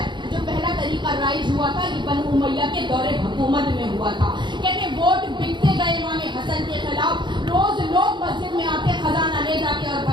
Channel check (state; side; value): late; left; 0.22 ms